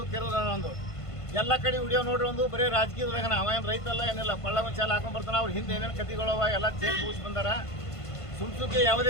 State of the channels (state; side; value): late; right; 1.5 ms